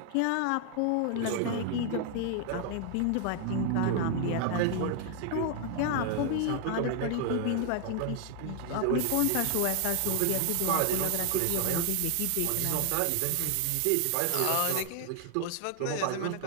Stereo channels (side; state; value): both; different; correlation 0.00